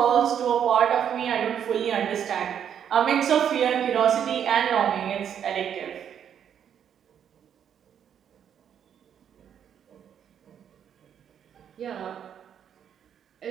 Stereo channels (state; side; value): quieter; left; 8.7 dB